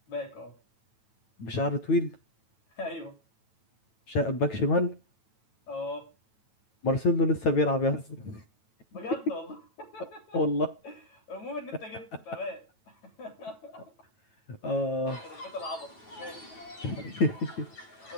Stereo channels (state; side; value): late; right; 9.1 ms